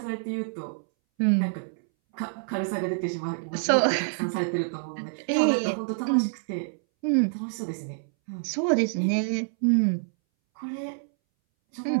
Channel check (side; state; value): left; silent; 60 dB below the other